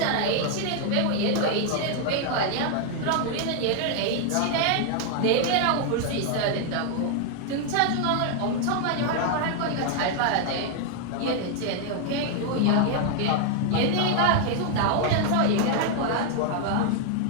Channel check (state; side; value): different; both; correlation 0.00